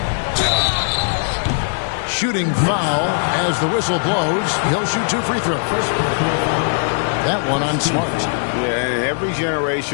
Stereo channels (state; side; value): silent; right; digital silence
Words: Shooting foul as the whistle blows. He'll shoot 2 free throws. That one on Smart. Yeah, every